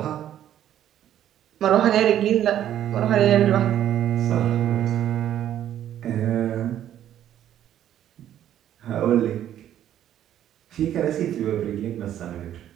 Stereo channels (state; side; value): quieter; left; 11.2 dB